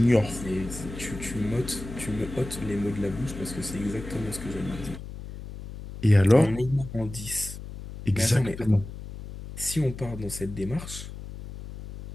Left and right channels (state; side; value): noise; left; hum, 11 dB below the sound